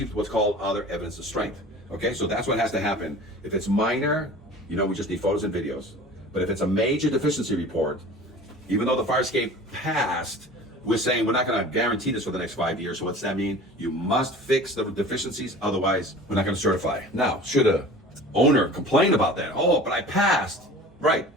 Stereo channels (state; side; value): normal; both; correlation 0.41